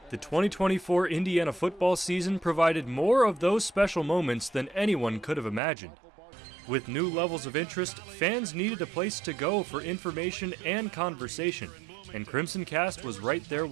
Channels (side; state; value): left; drops out; at 5.6 s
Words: the 2024 Indiana football season provided more of those special moments than anyone could have imagined. With new levels of interest, fans needed a place to go for information and conversation, and Crimson Cast was right there